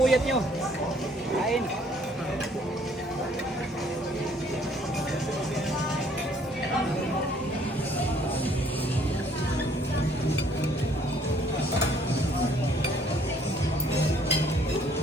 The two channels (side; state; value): both; normal; correlation 0.61